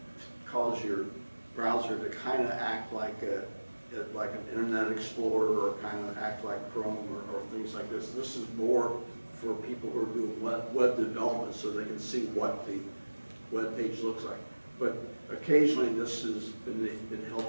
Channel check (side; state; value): both; inverted; correlation -1.00